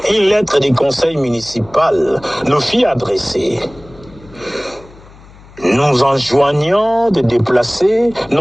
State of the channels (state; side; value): noise; left; hum, 23 dB below the sound